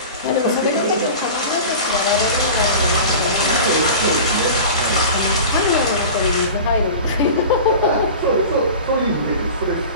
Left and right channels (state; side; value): inverted; both; correlation -0.35